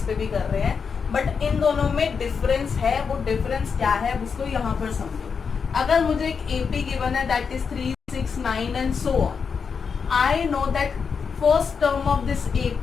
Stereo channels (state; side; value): quieter; right; 5.9 dB